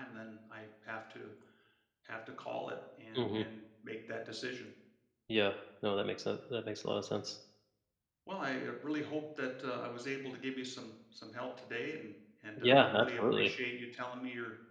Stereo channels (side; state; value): both; identical; correlation 1.00